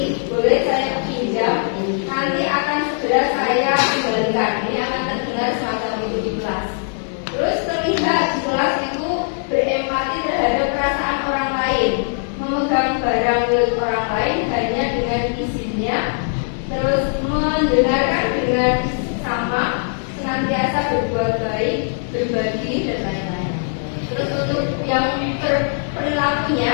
boleh saya pinjam, nanti akan segera saya kembalikan. Ini akan terdengar semacam itu di kelas. Terus terlihat di kelas itu berempati terhadap perasaan orang lain, memegang barang milik orang lain hanya dengan izinnya, terus mendengarkan dengan sama, senantiasa berbuat baik, berbagi, dan lain-lain. Terus untuk yang perilakunya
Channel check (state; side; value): silent; right; digital silence